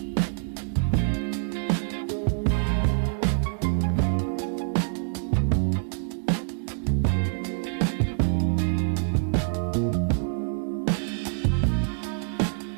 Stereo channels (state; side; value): silent; left; digital silence